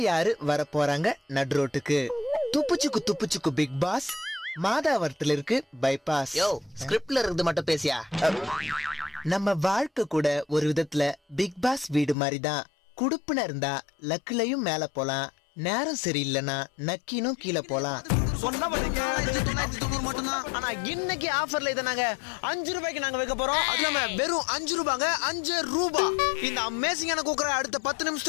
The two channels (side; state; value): right; drops out; at 12.2 s